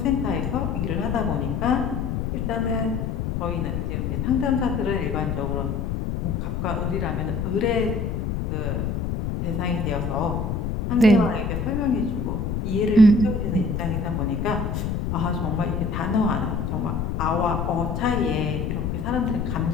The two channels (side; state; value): left; noise; rumble, 2 dB below the sound